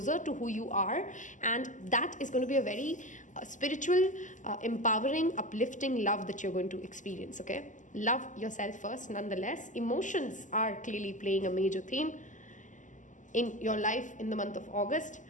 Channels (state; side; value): late; right; 0.37 ms